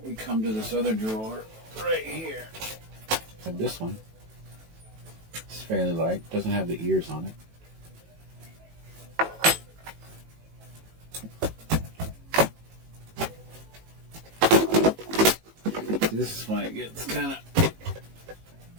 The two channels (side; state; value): left; late; 18 ms